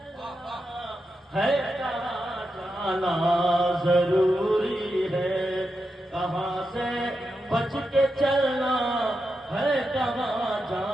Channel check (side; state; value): both; normal; correlation 0.87